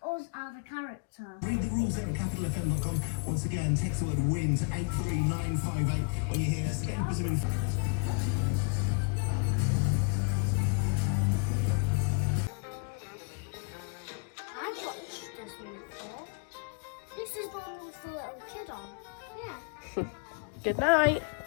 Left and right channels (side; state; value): right; quieter; 33.9 dB